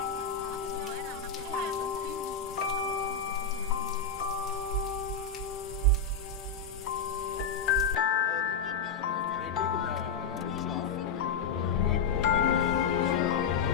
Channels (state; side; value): quieter; right; 5.0 dB